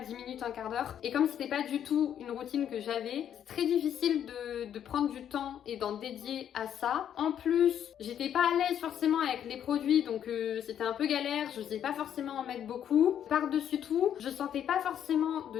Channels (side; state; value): right; quieter; 9.6 dB